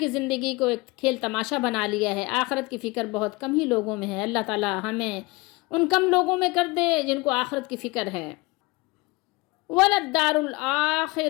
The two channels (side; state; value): right; quieter; 23.6 dB